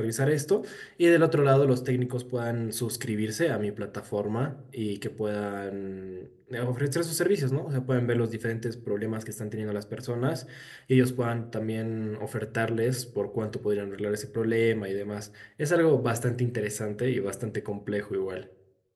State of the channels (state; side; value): identical; both; correlation 1.00